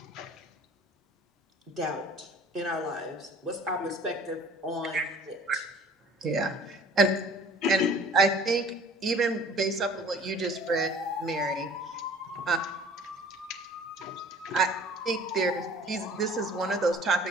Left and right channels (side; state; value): both; normal; correlation 0.49